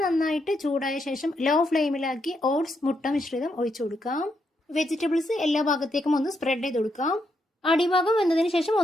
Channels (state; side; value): normal; both; correlation 0.80